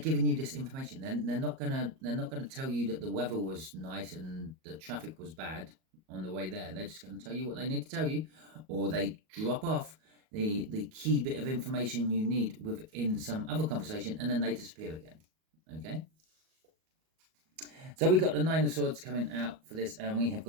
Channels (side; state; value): left; late; 38 ms